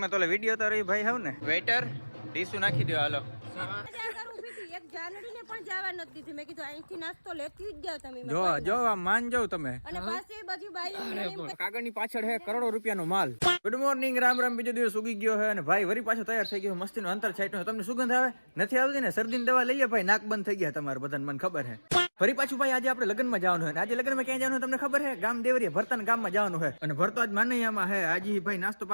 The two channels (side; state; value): both; inverted; correlation -1.00